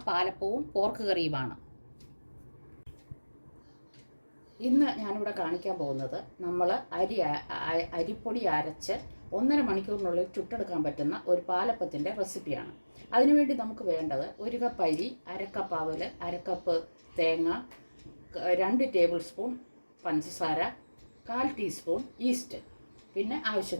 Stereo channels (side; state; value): both; inverted; correlation -1.00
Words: പാലപ്പവും പോർക്ക് കറിയുമാണ്. ഇന്ന് ഞാനിവിടെ കാണിക്കാൻ പോകുന്നത് നമ്മൾ അരിപ്പൊടി അരച്ച് 1.5 മണിക്കൂറിനുള്ളിൽ ചുട്ടെടുക്കാൻ പറ്റുന്ന ഒരു പാലപ്പത്തിൻ്റെ റെസിപ്പിയാണ്. അതിനുവേണ്ടി നമുക്ക് വേണ്ടത് 1 കപ്പ് അരി, 1/2 കപ്പ് അവൽ, 1/2 കപ്പ് തേങ്ങ, 2 ടേബിൾ സ്പൂൺ പഞ്ചസാര, 1/4 ടീസ്പൂൺ ഈസ്റ്റ്, പിന്നെ